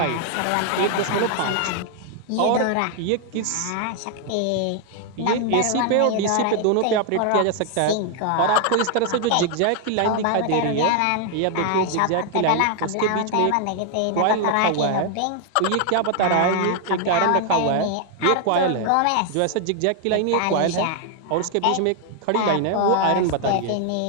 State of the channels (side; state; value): both; different; correlation 0.00